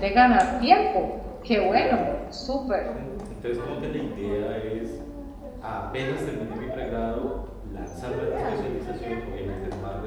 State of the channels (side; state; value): both; identical; correlation 1.00